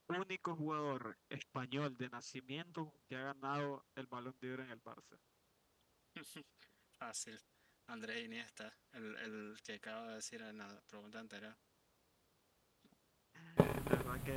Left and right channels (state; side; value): identical; both; correlation 1.00